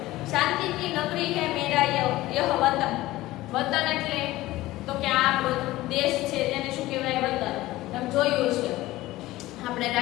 શાંતિ કી નગરી હે મેરા યહ વતન. વતન એટલે તો કે આ આપણો દેશ છે તેને શું કહેવાય? વતન. તમે જોયું છે આપણે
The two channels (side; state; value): right; quieter; 17.3 dB